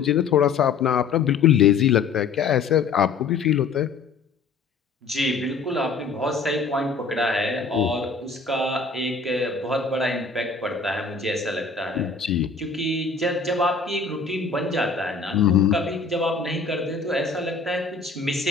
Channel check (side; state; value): right; quieter; 4.9 dB